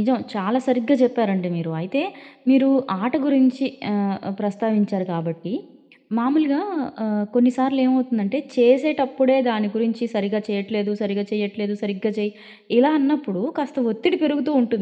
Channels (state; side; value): identical; both; correlation 1.00